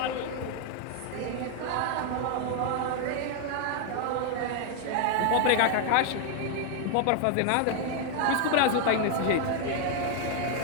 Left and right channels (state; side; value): different; both; correlation 0.00